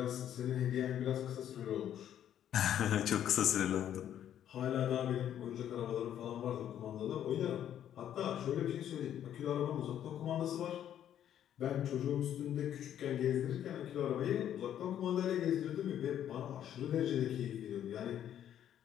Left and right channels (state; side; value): quieter; right; 10.5 dB